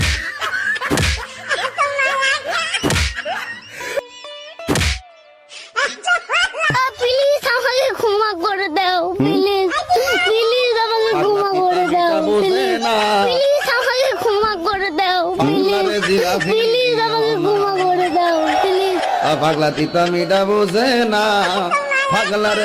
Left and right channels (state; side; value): identical; both; correlation 1.00